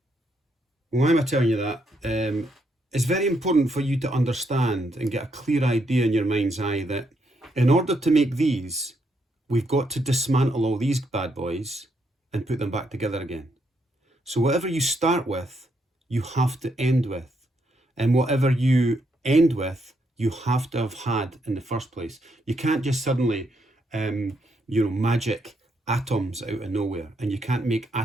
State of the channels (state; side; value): normal; both; correlation 0.77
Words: Why am I telling you that? It's very important for you to understand and get a clear idea in your mind's eye that in order to make these, we've got to dismantle all these bad boys and put them back together again. So whatever you start with, you have to end with. And whatever you end with, you have to have had in the first place. You can't just suddenly, magic atoms out of nowhere, and you can't make